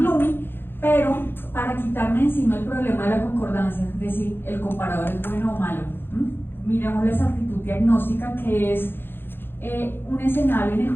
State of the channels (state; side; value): late; right; 0.10 ms